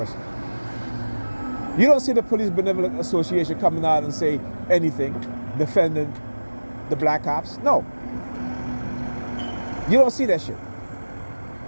You don't see the Police Benevolent Association coming out and say anything defending the black cops. No. You don't see that shit,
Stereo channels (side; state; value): both; inverted; correlation -1.00